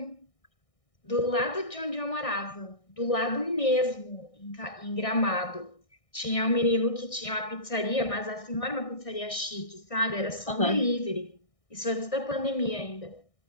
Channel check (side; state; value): right; late; 1.6 ms